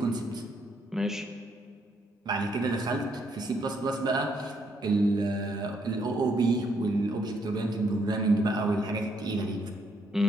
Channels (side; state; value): both; normal; correlation 0.73